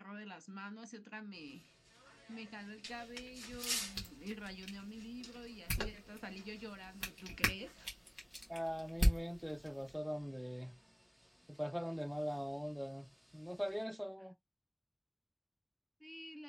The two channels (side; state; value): both; identical; correlation 1.00